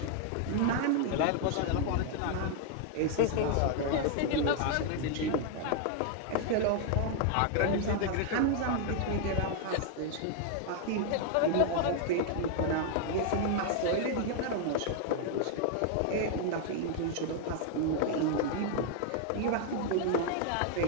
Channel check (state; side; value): different; both; correlation 0.00